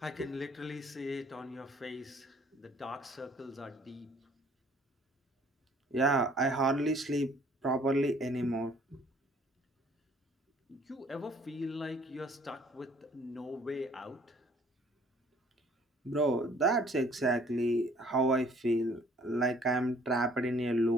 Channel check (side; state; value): both; normal; correlation 0.58